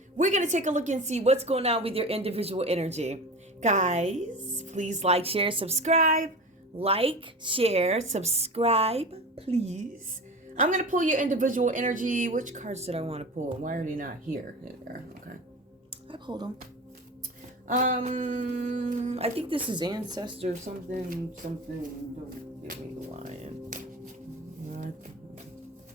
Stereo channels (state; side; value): normal; both; correlation 0.31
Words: We're going to take a look and see what's going on with your individual energy. Guys, please like, share, subscribe. Like, share, subscribe, please. I'm going to pull your individual energy. Which cards did I want to pull? Why are they not here? There. Okay. I pulled them. I think this is ancestor something. Don't give me the lion.